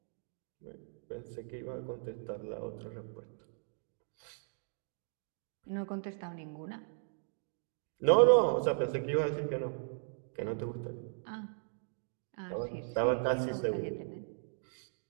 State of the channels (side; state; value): left; silent; digital silence